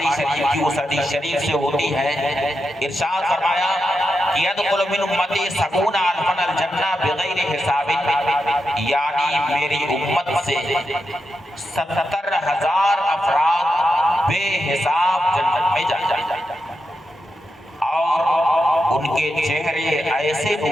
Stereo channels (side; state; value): both; normal; correlation 0.87